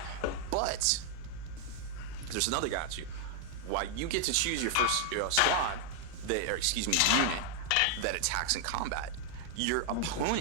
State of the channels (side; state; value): both; different; correlation 0.00